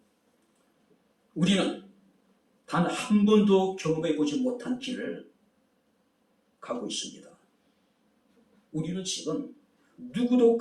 우리는 단 한 번도 경험해보지 못한 길을 가고 있습니다. 우리는 지금 누구도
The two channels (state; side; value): identical; both; correlation 1.00